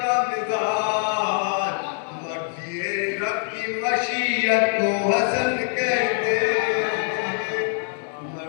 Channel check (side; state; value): right; silent; 61 dB below the other